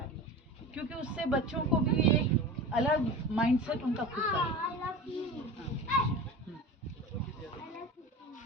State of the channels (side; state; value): both; normal; correlation 0.32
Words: क्योंकि उससे बच्चों को भी एक अलग माइंडसेट उनका खुद का है।